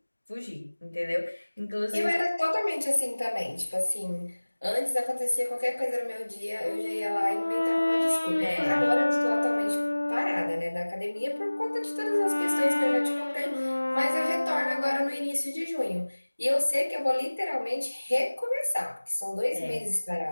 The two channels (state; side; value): inverted; both; correlation -1.00